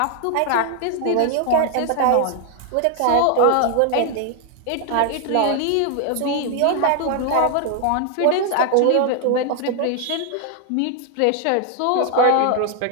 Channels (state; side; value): different; both; correlation 0.00